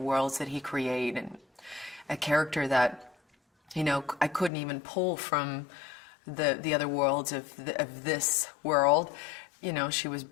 that he created, and a character that, you know, I couldn't even pull from the other worlds of this world. You know, she was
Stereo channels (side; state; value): right; drops out; at 4.5 s